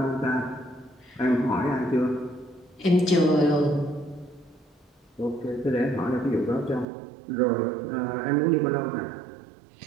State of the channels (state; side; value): drops out; left; at 6.9 s